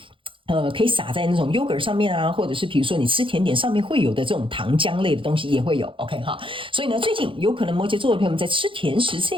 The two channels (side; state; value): left; late; 0.25 ms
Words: 可以撒在那種 yogurt 上面啊，或者是比如說你吃甜點上面會有的這種糖漿類的東西也會有 ，OK 哈。所以呢，最近有可能摩羯座的朋友們在吃甜食這